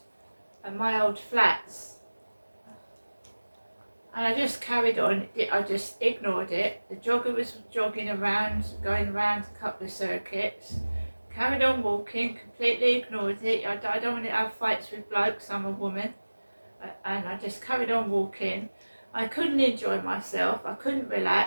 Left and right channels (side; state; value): both; inverted; correlation -1.00